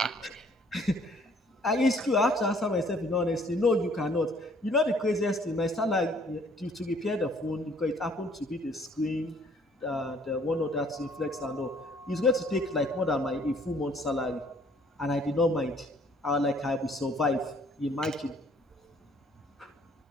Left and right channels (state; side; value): normal; both; correlation 0.60